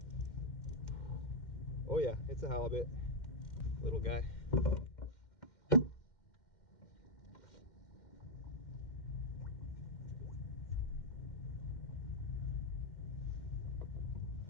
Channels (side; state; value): right; late; 2.1 ms